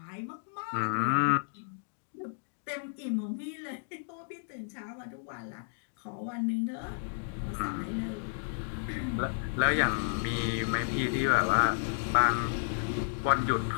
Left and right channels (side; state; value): right; silent; digital silence